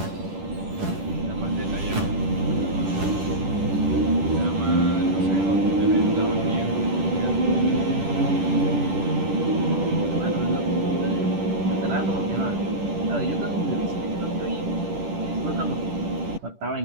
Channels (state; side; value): late; left; 10 ms